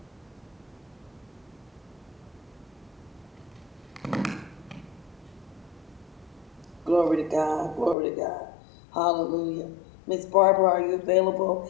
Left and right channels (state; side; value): drops out; right; at 8.0 s